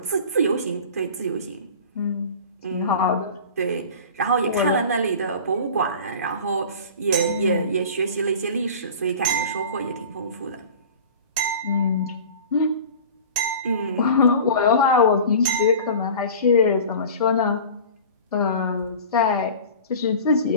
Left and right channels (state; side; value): inverted; both; correlation -0.39